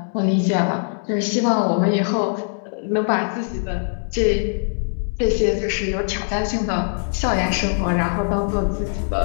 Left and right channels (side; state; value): right; silent; 65 dB below the other